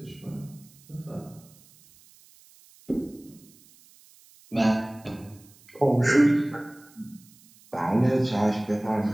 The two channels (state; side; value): noise; right; hiss, 26 dB below the sound